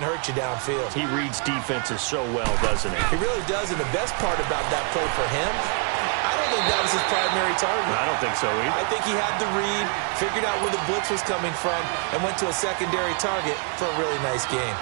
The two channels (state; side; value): quieter; left; 39.3 dB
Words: hurt you downfield. He reads defenses so well, doesn't he? He really does, and the best part about that play for him, I don't think that was his primary target. I don't think so either. I think he had the read, figured out where the blitz was coming from, and went to a secondary target for a really nice game.